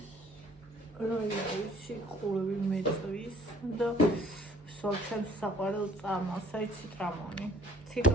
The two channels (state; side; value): normal; both; correlation 0.56